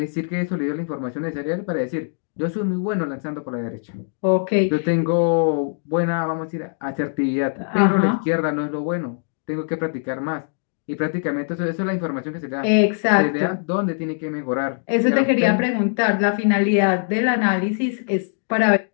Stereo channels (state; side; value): silent; right; digital silence